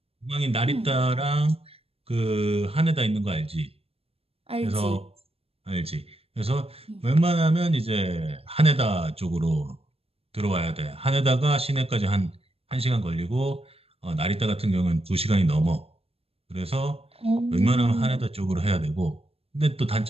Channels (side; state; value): left; late; 0.28 ms